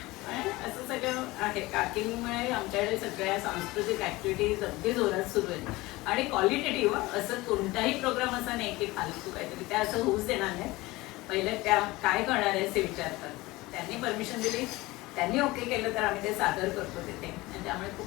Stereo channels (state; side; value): quieter; right; 20.5 dB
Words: असं सगळं आहे. काकींमुळे आमच्याकडे सगळ्या सांस्कृतिक ऍक्टिव्हिटीज अगदी जोरात सुरू आहेत आणि क्वालिटेटिव्ह. असं कोणताही प्रोग्राम असा नाही की फालतू काहीतरी, त्या असं होऊच देणार नाही. पहिले त्या काय करणार आहे असे विचारतात, त्यांनी परमिशन दिली, त्यांनी ओके केलं तर आम्ही ते सादर करतो तिथे. आणि त्यामुळे